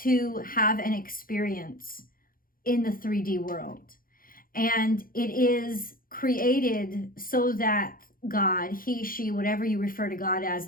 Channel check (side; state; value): right; late; 0.41 ms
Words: have an experience in the 3D world. And it is created so that God, he, she, whatever you refer to God